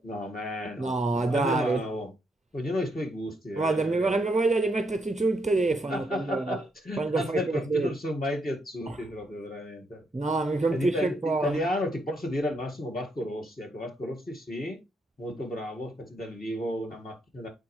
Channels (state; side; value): normal; both; correlation 0.77